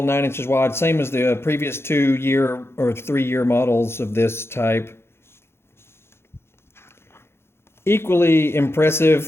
9 inches wide, same as the previous 2-year or 3-year models of this type. Equally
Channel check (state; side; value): late; right; 0.12 ms